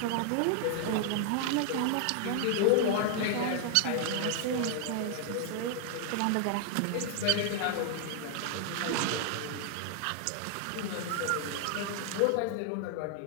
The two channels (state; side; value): different; both; correlation 0.00